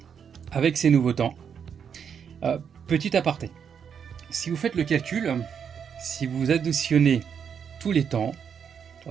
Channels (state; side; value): quieter; left; 7.4 dB